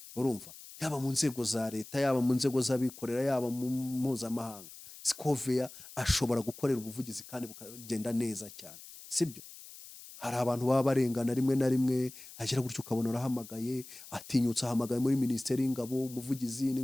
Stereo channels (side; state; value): left; noise; hiss, 16 dB below the sound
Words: urumva, yaba mu nzego za leta, yaba mu nzego z'abikorera, yaba mu mpuzamahanga, Scovia ashobora gukorera ubuvugizi kandi bukagenda neza cyane, sibyo? Hari abantu baba barengana rimwe na rimwe, agira gutyo ukabona arahamagaye, atinyutse ahamagaye muri Minisiteri y'Ingabo, umuvugizi